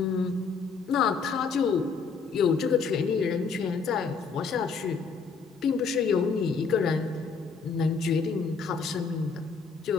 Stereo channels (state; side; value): quieter; right; 5.2 dB